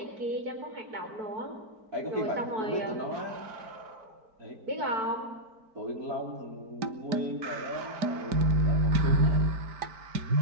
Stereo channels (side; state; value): left; late; 4.5 ms